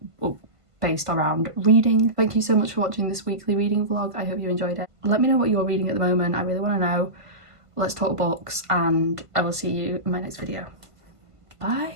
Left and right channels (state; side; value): late; left; 1.5 ms